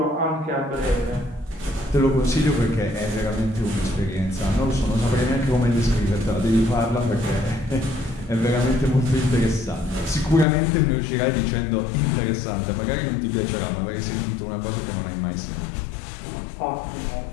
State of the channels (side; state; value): right; drops out; at 10.5 s